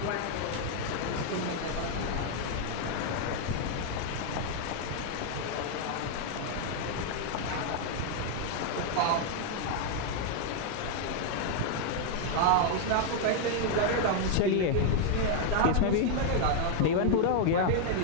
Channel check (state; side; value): different; both; correlation 0.00